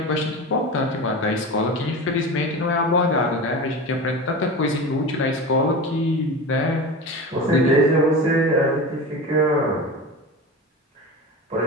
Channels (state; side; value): normal; both; correlation 0.28